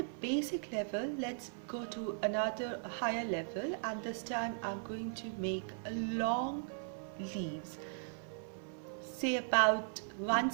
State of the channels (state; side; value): silent; left; 52 dB below the other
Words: basic level, let's go to another higher level, and this time I'm going to make a long leaves, say about 1